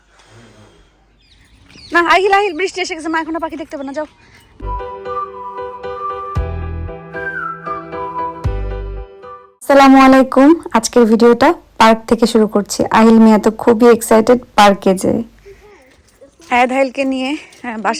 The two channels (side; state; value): both; identical; correlation 1.00